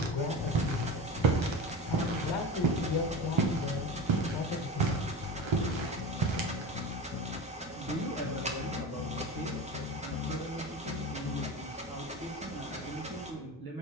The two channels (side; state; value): both; normal; correlation 0.29